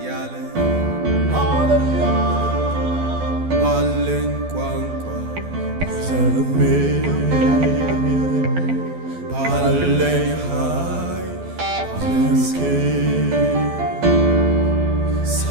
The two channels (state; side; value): late; left; 12 ms